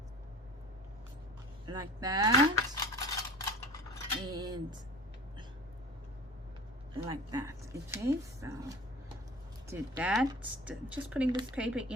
like that, and like that. Okay, so did that. Just putting this paper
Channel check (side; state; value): both; normal; correlation 0.42